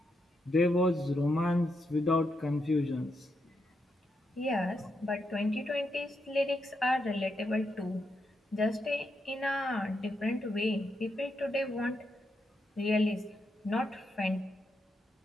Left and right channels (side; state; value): both; normal; correlation 0.82